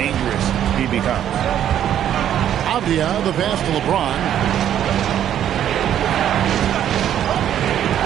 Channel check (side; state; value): left; quieter; 10.5 dB